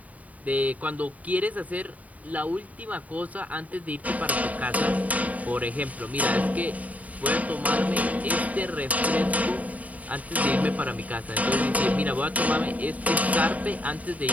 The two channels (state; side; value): late; left; 0.071 ms